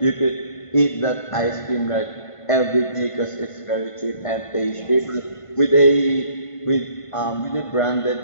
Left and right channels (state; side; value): late; right; 1.5 ms